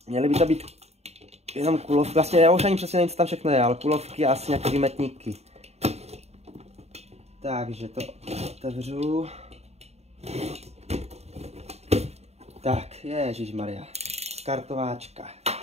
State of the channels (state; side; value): late; left; 0.31 ms